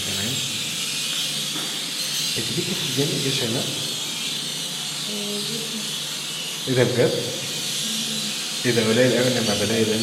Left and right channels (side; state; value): both; identical; correlation 1.00